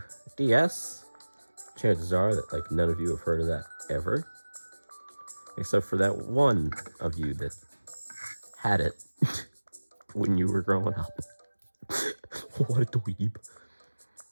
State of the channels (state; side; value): inverted; both; correlation -1.00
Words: DS. Chances are that like none of you have heard of that ever, except for that one of you that had it when you were growing up. What a dweeb.